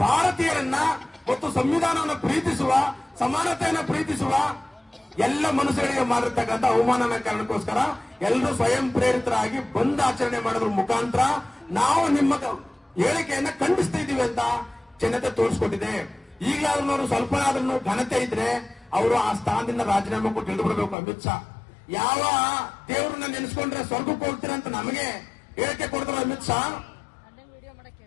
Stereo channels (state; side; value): drops out; right; at 21.0 s